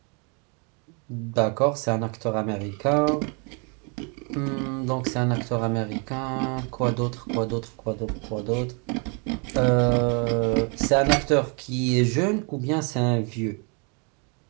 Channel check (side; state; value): left; quieter; 35.1 dB